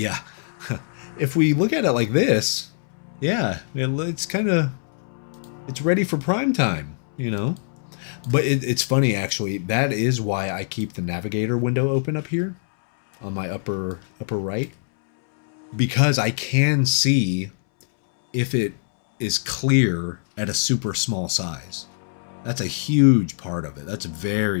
If we look at it like this, yeah, it's kind of, it's ready for prime time, you know? But it's funny, actually. That is why I keep the navigator window open up here on my upper right. Because I can see if it is clear at a super small size. That's a huge part of it. That's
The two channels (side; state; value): right; silent; 63 dB below the other